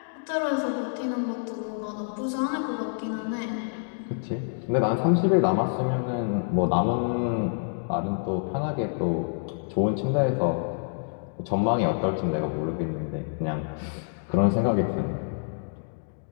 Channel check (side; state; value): right; silent; digital silence